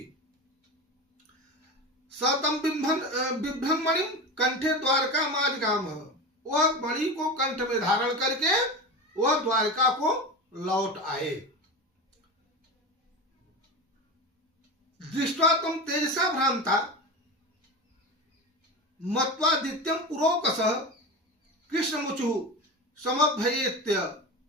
सतम बिभ्रन मणि कंठे द्वारका माजगाम, वह मणि को कंठ में धारण करके वह द्वारका को लौट आए। दृष्ट्वा तुम तेजसा भ्रांता मत्वादित्यम पुरोकसः कृष्णमुचु समभयेत्य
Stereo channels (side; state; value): both; normal; correlation 0.25